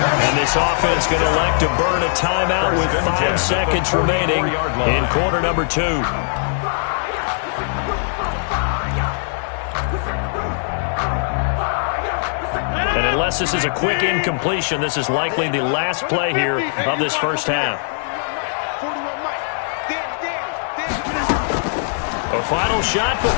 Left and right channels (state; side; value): silent; right; 63 dB below the other